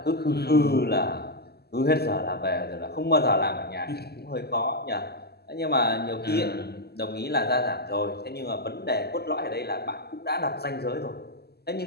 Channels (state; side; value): late; right; 0.46 ms